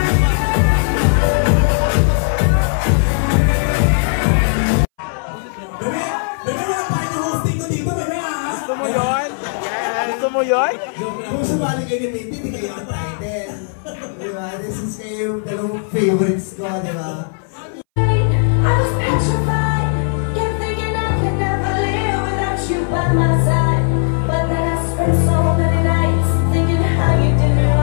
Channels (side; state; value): right; silent; 64 dB below the other